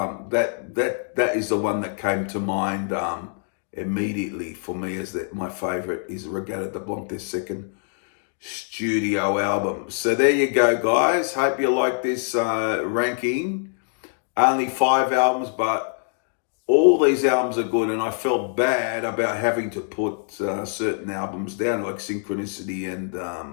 that is the one that came to mind immediately for me as my favorite is Regatta de Blanc, their second studio album. So there you go, guys. Hope you like this ranking. Only 5 albums, but all these albums are good, and I felt bad about having to put certain albums down, like Synchronicity and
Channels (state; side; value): silent; right; 63 dB below the other